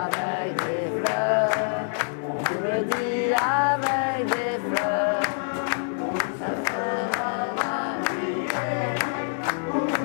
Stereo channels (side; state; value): right; silent; digital silence